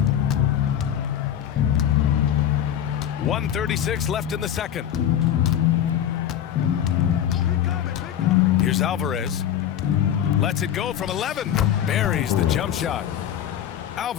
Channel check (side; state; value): right; quieter; 10.2 dB